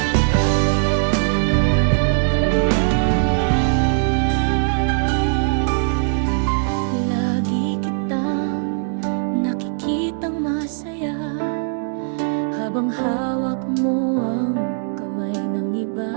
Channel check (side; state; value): left; silent; digital silence